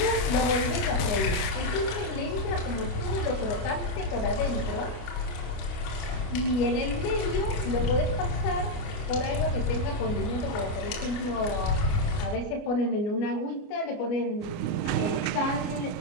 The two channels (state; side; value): late; right; 29 ms